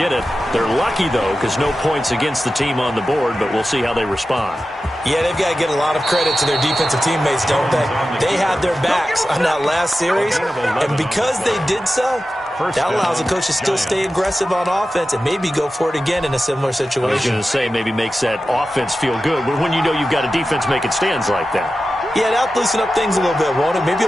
it. They're lucky, though, because no points against the team on the board, but we'll see how they respond. Yeah, they've got to get a lot of credit to their defensive teammates, don't they? They had their backs on that last series, and because they did so, that allows the coach to still stay aggressive on offense and maybe go for it again in a similar situation. I was going to say maybe makes that offense feel good, but when you know you've got a defense making stands like that. Yeah, that'll loosen up things a little bit, won't it? Maybe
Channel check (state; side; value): normal; both; correlation 0.93